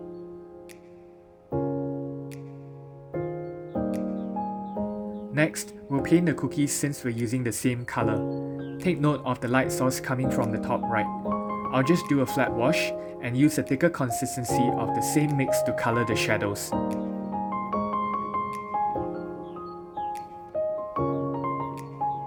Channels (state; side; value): identical; both; correlation 1.00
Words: Next, we'll paint the cookies since we're using the same color. Take note of the light source coming from the top right. I'll just do a flat wash and use a thicker consistency of the same mix to color the shadows.